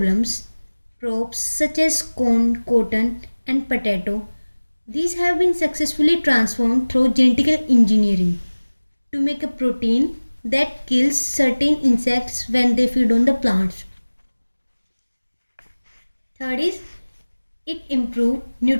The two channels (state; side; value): inverted; both; correlation -1.00